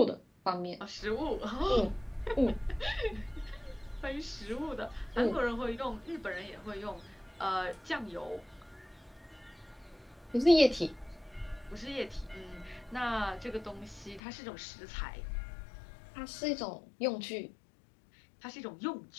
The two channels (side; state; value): right; drops out; at 14.2 s